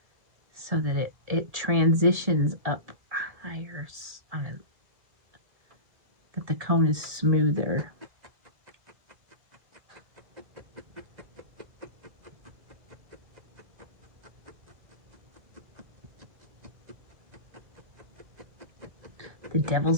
so that it transitions up higher on it, that the cone is smoother. The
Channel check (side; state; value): left; late; 1.7 ms